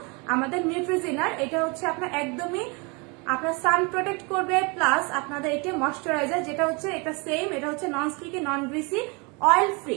আমাদের নিউট্রিজিনার, এটা হচ্ছে আপনার একদমই আপনার সান প্রোটেক্ট করবে, প্লাস আপনাদের এটা ময়শ্চারাইজার যেটা হচ্ছে এটা সেম, এটা হচ্ছে নন স্টিকি, নন গ্রিসি, অয়েল ফ্রি।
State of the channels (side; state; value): left; quieter; 30.2 dB